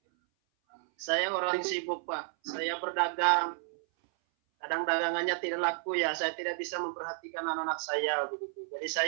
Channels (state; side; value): silent; left; 57 dB below the other